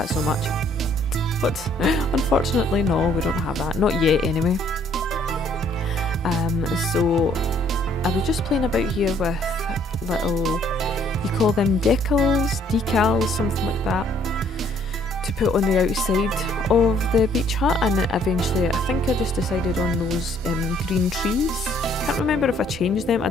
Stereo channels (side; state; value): both; normal; correlation 0.63